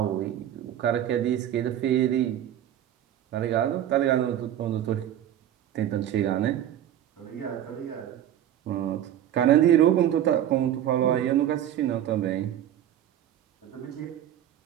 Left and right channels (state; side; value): quieter; left; 11.3 dB